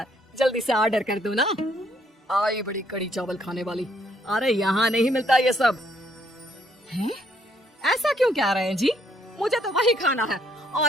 जल्दी से ऑर्डर कर दो ना। आई बड़ी कड़ी चावल खाने वाली। अरे यहाँ नहीं मिलता ये सब। हैं? ऐसा क्यों कह रहे हैं जी? मुझे तो वही खाना है,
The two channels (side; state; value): both; normal; correlation 0.69